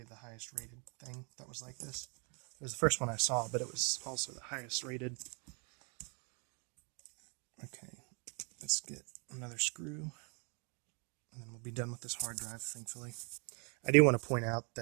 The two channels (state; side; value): quieter; left; 36.4 dB